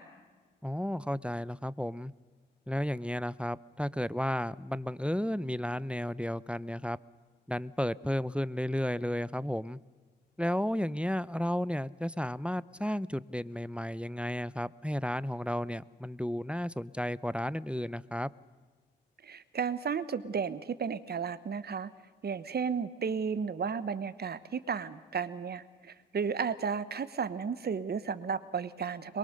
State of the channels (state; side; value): normal; both; correlation 0.70